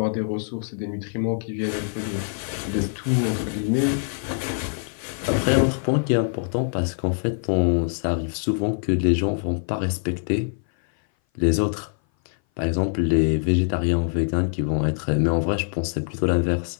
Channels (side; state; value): right; silent; 58 dB below the other